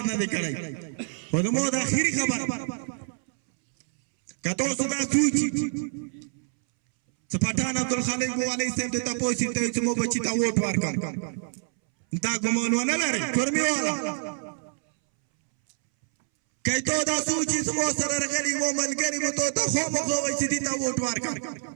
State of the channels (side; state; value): left; silent; 61 dB below the other